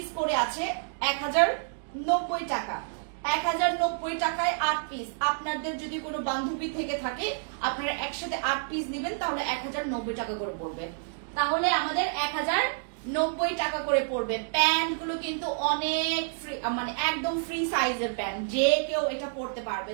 করে আছে, 1090 টাকা, 1090 টাকায় 8 পিস। আপনাদের যদি কোনো বান্ধবী থেকে থাকে আপনারা একসাথে 8 পিস নেবেন, তাহলে 1090 টাকা করে পড়বে, তাহলে আমাদের 1090 টাকা করে পড়বে। প্যান্ট গুলো কিন্তু অনেক ফ্রি, মানে একদম ফ্রি সাইজের প্যান্ট, যে কেউ এটা পড়তে পারবে।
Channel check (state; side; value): silent; left; digital silence